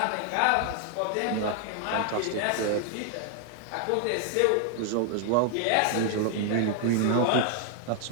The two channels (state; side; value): different; both; correlation 0.00